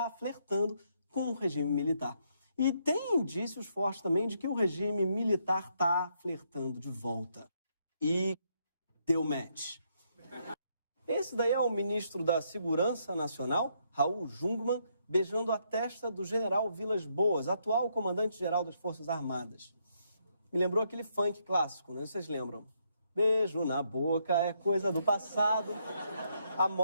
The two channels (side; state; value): both; inverted; correlation -0.75